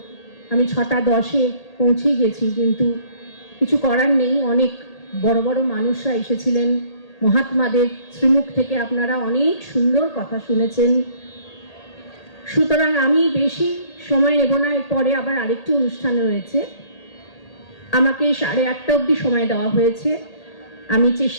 আমি 6:10-এ পৌঁছে গেছি, কিন্তু কিছু করার নেই। অনেক বড় বড় মানুষরা এসেছিলেন, মহাত্মাদের শ্রীমুখ থেকে আপনারা অনেক সুন্দর কথা শুনেছেন। সুতরাং আমি বেশি সময় নেব না, এরপরে আবার আরেকটি অনুষ্ঠান রয়েছে। আমাকে 8:30 অবধি সময় দেওয়া হয়েছে। আমি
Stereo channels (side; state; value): right; late; 1.8 ms